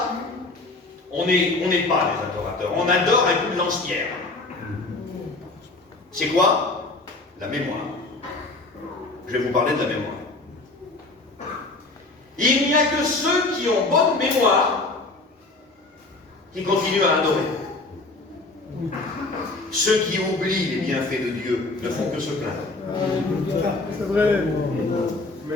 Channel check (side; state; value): right; quieter; 3.2 dB